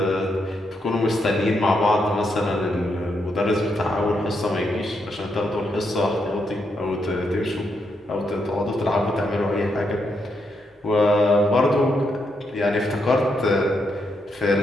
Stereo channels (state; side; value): normal; both; correlation 0.80